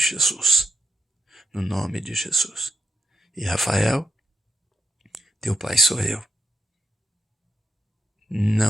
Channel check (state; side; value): normal; both; correlation 0.84